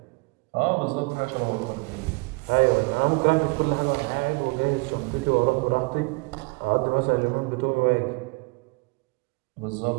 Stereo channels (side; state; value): left; quieter; 28.6 dB